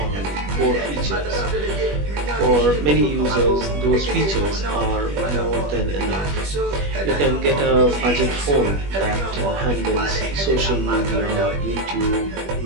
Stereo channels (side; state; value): left; late; 21 ms